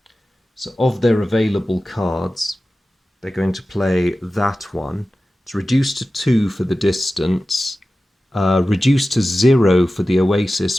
So of their available cards, they're going to play that one. It's reduced to 2 for the distance, reduced to 0 for the oasis,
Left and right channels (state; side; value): normal; both; correlation 0.95